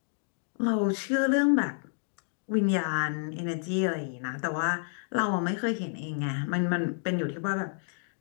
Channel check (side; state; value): right; silent; digital silence